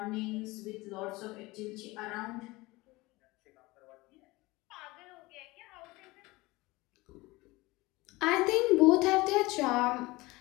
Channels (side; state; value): right; quieter; 21.6 dB